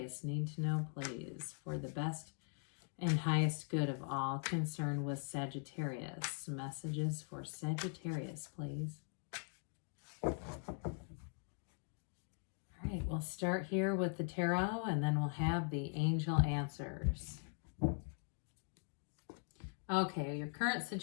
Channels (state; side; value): silent; right; 50 dB below the other